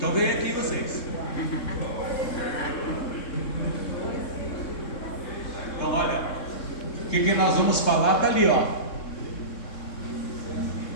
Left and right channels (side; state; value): right; late; 3.7 ms